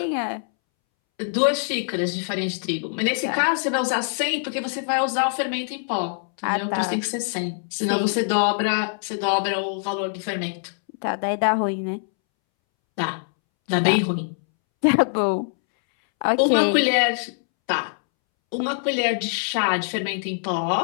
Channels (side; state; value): right; silent; 63 dB below the other